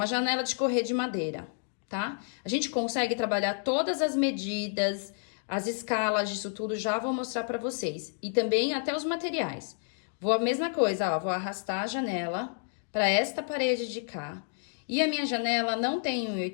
janela de correr de madeira, tá? A gente consegue trabalhar todas as medidas, as escalas disso tudo, já vou mostrar pra vocês. E também até os materiais. Vou a mesma coisa, ó, vou arrastar a janela pra esta parede de cá. E a minha janela não tem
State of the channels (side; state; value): right; silent; digital silence